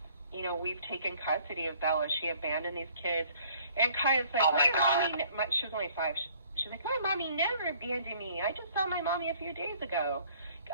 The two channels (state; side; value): inverted; both; correlation -0.57